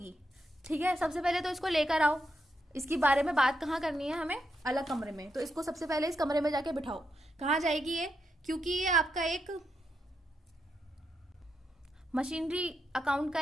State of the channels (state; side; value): normal; both; correlation 0.83